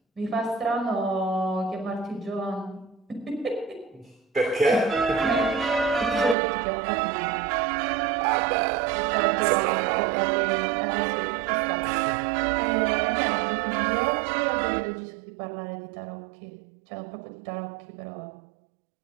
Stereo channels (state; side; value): drops out; left; at 6.4 s